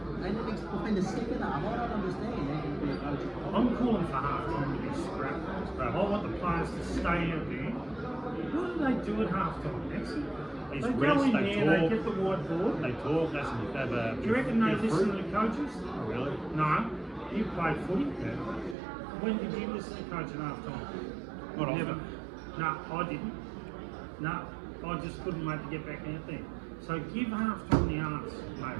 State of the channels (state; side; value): drops out; left; at 18.8 s